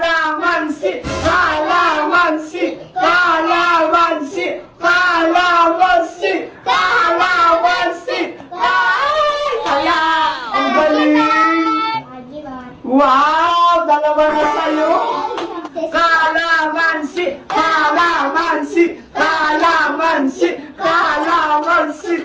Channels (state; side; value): identical; both; correlation 1.00